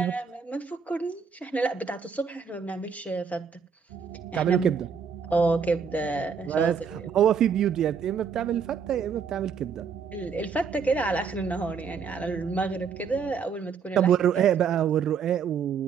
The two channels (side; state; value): left; quieter; 6.4 dB